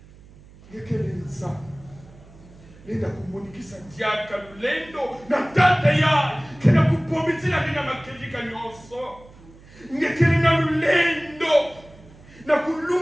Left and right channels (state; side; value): noise; right; hum, 23 dB below the sound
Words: ngekele Nzambi nenda kumunikisa diaka lulendo na tata yayi kena kupomitila nina makejika nyonso ngekele na lulendo na